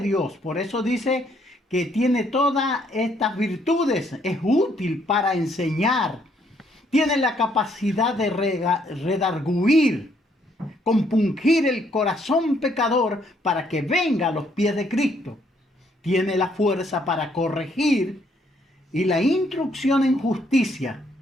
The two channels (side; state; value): both; normal; correlation 0.69